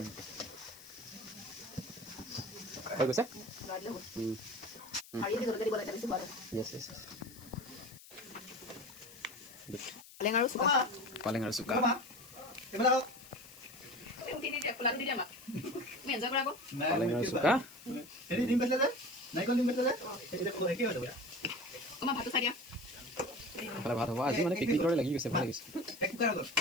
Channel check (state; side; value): noise; left; hiss, 19 dB below the sound